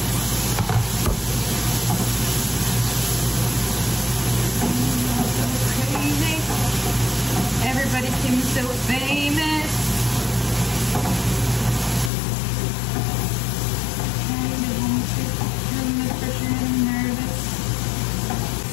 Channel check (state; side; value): drops out; right; at 12.1 s